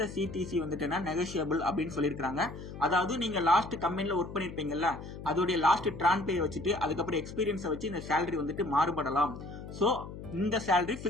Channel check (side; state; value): left; noise; hum, 11 dB below the sound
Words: சிடிசி வந்துட்டு நெகோஷியபிள் அப்படின்னு சொல்லியிருக்காங்க. அதாவது நீங்க லாஸ்ட் கம்பெனில ஒர்க் பண்ணிருப்பீங்கல்ல, அதோட லாஸ்ட் டிரான் பே வச்சுட்டு அதுக்கப்புறம் எக்ஸ்பீரியன்ஸை வச்சு இந்த சேலரி வந்துட்டு மாறுபடலாம். சோ இந்த சேலரி